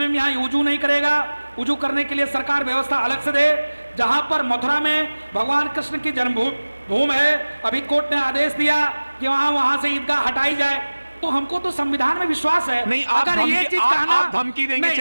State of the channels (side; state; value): both; inverted; correlation -1.00